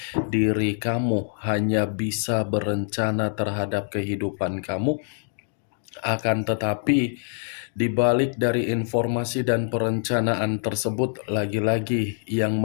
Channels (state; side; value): silent; right; digital silence